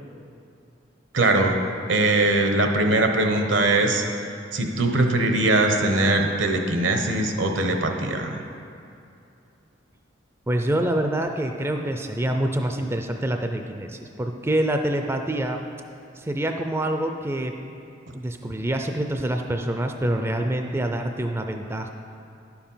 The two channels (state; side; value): normal; both; correlation 0.44